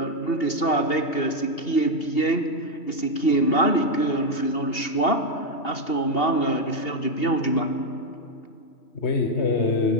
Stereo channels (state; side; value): late; right; 2.8 ms